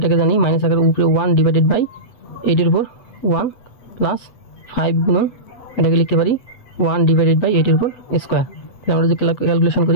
জানি মাইনাস আকারের উপরে 1 ডিভাইডেড বাই 8 এর উপর 1 প্লাস 5 গুণন এটাকে লিখতে পারি 1 ডিভাইডেড বাই 8 এর উপর স্কোয়ার। তাহলে আমরা যদি ক্যালকুলেশন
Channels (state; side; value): late; right; 8.1 ms